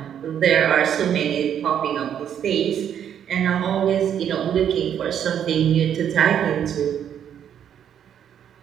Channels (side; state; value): left; quieter; 9.2 dB